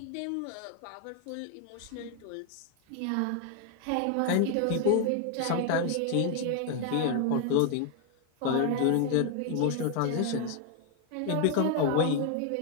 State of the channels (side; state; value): both; different; correlation 0.01